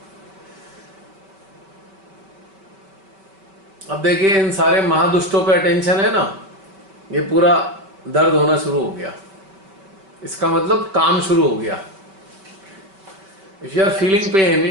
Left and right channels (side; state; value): left; late; 5.2 ms